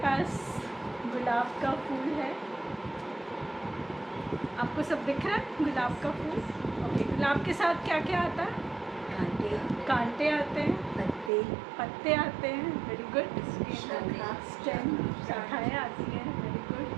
पास गुलाब का फूल है, आपको सब दिख रहा है गुलाब का फूल? ओके, गुलाब के साथ क्या क्या आता है? कांटे आते हैं, पत्ते आते हैं, वेरी गुड। स्टेम, शाखाएँ आती हैं, वेरी गुड।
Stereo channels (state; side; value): drops out; left; at 11.3 s